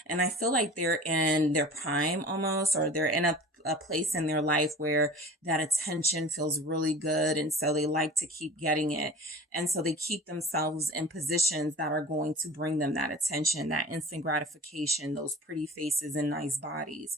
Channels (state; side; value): normal; both; correlation 0.40